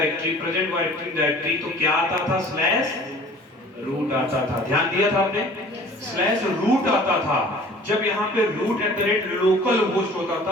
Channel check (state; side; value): normal; both; correlation 0.48